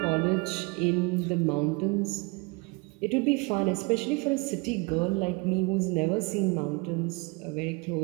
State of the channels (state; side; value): quieter; left; 28.4 dB